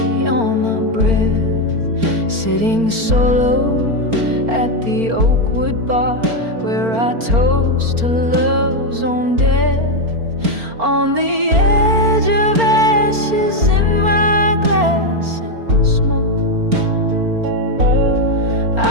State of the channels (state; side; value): late; left; 4.4 ms